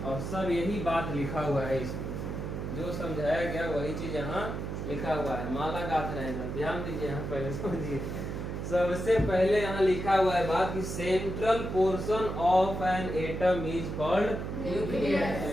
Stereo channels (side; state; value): right; noise; hum, 5 dB below the sound